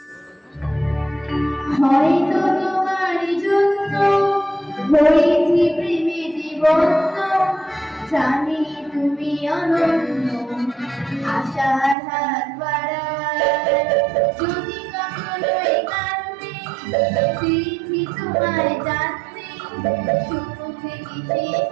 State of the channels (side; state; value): left; drops out; at 12.0 s